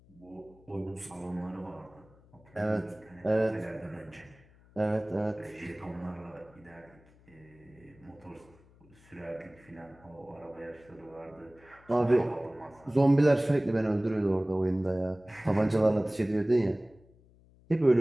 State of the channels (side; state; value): left; noise; hum, 27 dB below the sound